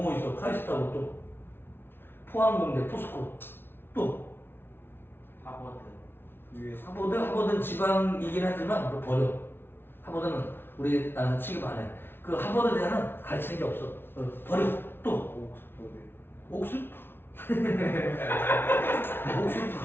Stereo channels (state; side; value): late; right; 0.11 ms